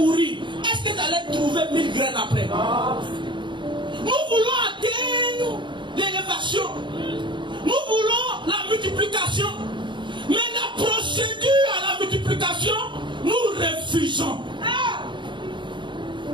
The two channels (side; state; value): left; late; 0.23 ms